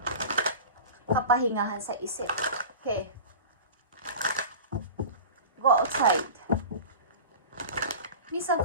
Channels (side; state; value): both; inverted; correlation -0.34